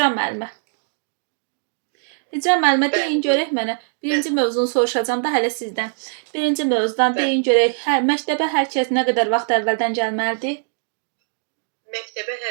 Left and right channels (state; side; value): silent; left; digital silence